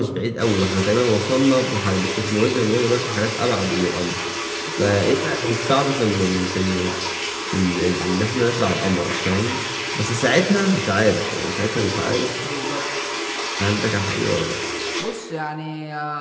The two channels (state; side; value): identical; both; correlation 1.00